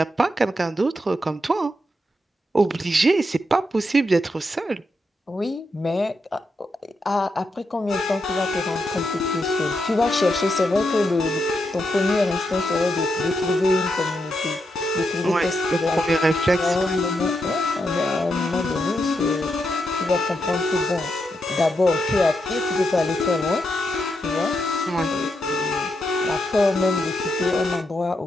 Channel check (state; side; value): normal; both; correlation 0.83